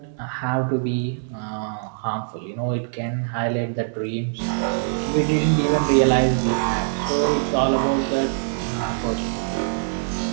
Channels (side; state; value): left; silent; digital silence